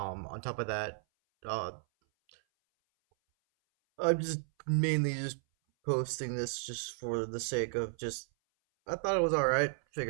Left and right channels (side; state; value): left; silent; 55 dB below the other